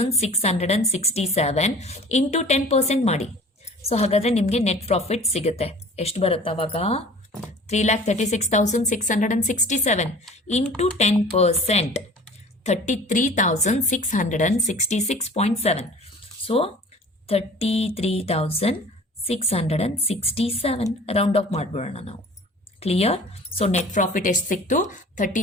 ಇಂಟು 10% ಮಾಡಿ. ಸೊ ಹಾಗಾದ್ರೆ ನಿಮಗೆ ನೆಟ್ ಪ್ರಾಫಿಟ್ ಸಿಗುತ್ತೆ. ಎಷ್ಟು ಬರುತ್ತೆ ಅವಾಗ? 3,36,667 ಇಂಟು 10%, 33,666.7. ಸೊ 33,667 ರೌಂಡ್ ಆಫ್ ಮಾಡ್ಬಿಡೋಣ ನಾವು. ಕ್ಲಿಯರ್? ಸೊ ನೆಟ್ ಪ್ರಾಫಿಟ್ ಎಷ್ಟು ಸಿಕ್ತು?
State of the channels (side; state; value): both; normal; correlation 0.45